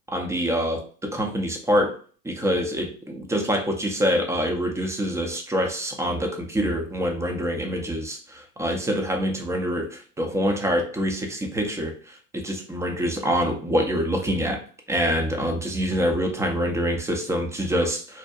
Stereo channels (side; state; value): both; normal; correlation 0.60